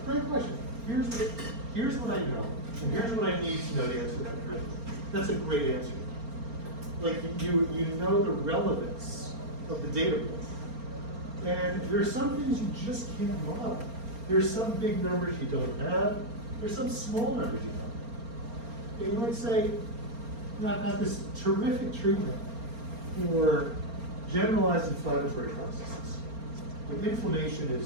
great question. Here's what I know, and here's what I need to know to answer that correctly. That's a great answer. Like you know the relevance of the data. And there's some things you just can't model. There's some big numbers you don't have. There's some small numbers you don't have. And you might say, I've got this terrific treatment for generalized inflammatory processes. When inflammation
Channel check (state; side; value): late; left; 4.3 ms